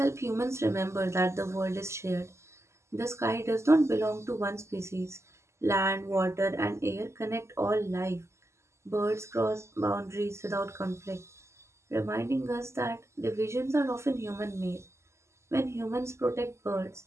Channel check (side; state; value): left; late; 0.13 ms